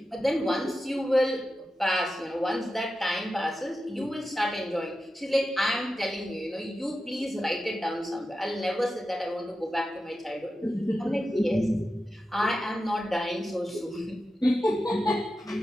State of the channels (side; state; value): both; normal; correlation 0.91